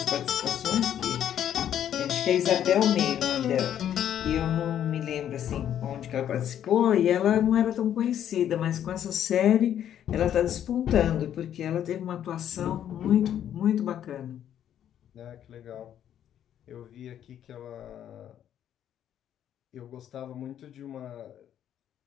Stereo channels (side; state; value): right; quieter; 10.3 dB